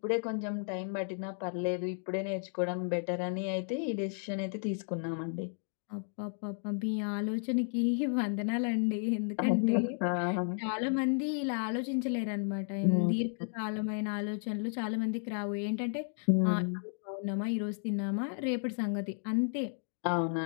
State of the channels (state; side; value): silent; right; 56 dB below the other